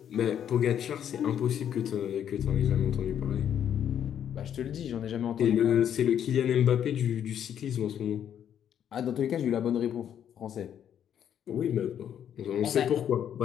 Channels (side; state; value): right; quieter; 9.5 dB